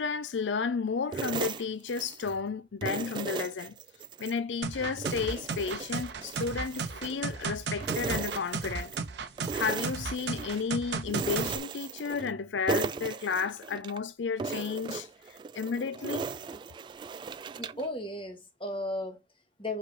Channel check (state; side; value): normal; both; correlation 0.19